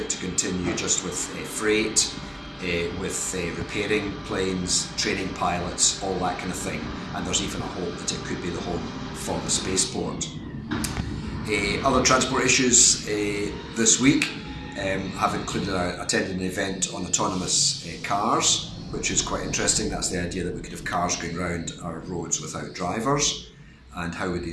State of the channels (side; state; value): both; identical; correlation 1.00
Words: to continue just with freight, with repairing planes, training pilots, all that kind of thing, and there's even a hope that it could be the home for the spaceport. Other transport issues this week have included attending an event on autonomous cars, which is quite interesting. That's the idea that we could have cars going around our roads without drivers, and how would the